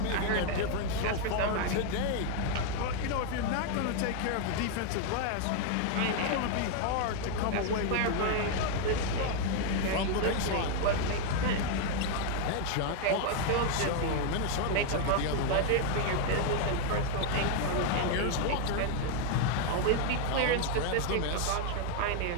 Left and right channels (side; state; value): both; different; correlation 0.00